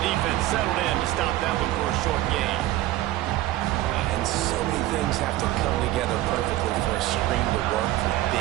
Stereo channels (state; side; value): quieter; left; 15.5 dB